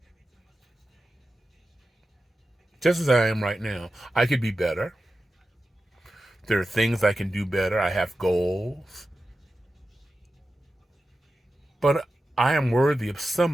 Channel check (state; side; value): normal; both; correlation 0.92